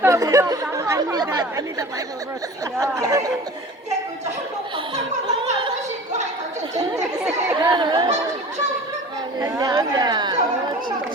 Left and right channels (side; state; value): both; normal; correlation 0.40